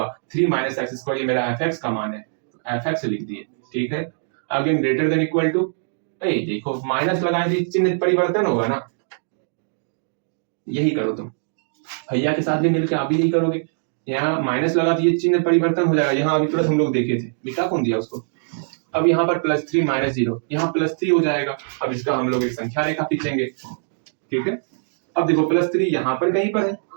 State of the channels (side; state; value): left; silent; digital silence